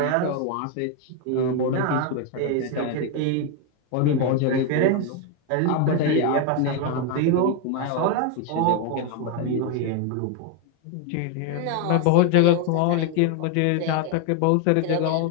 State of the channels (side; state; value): both; different; correlation 0.01